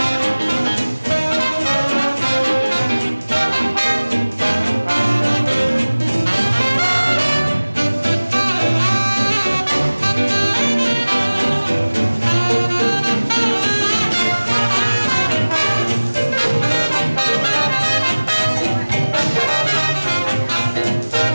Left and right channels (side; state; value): both; inverted; correlation -1.00